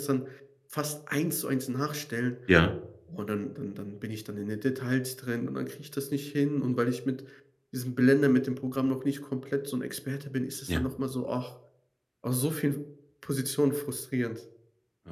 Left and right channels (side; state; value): both; identical; correlation 1.00